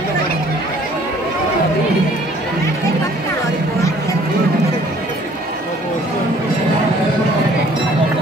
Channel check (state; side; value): normal; both; correlation 0.57